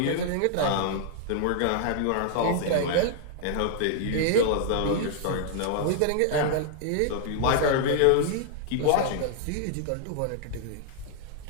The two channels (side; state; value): both; different; correlation -0.01